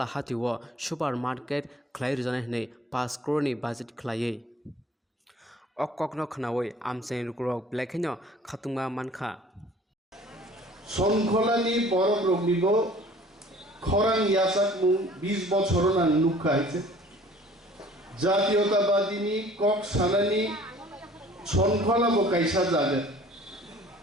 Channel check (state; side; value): normal; both; correlation 0.51